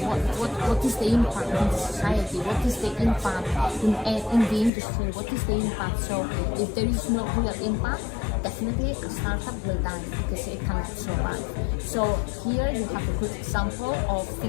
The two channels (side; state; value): right; drops out; at 4.7 s